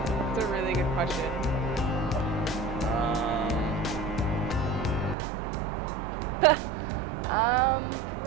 It's a really good question.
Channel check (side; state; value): left; drops out; at 5.2 s